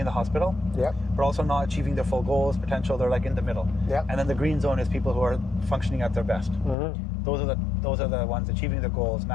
in the hospital, but also not achieving their full goals, potential, they're like in the middle. And then the green zone is people who are functioning at their best. Those are the ones achieving their goals,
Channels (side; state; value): right; drops out; at 6.8 s